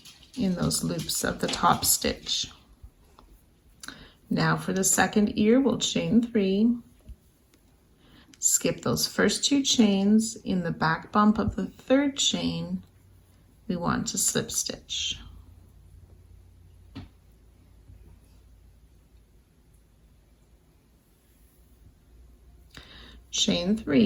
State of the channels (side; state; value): both; identical; correlation 1.00